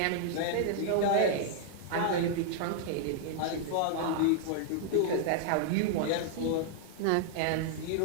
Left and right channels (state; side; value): different; both; correlation -0.01